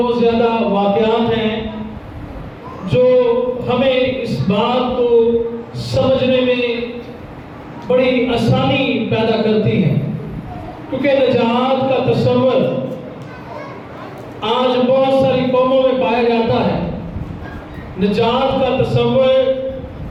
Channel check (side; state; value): both; identical; correlation 1.00